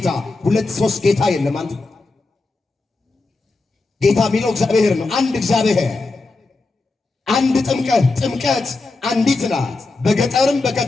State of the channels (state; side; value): quieter; right; 3.5 dB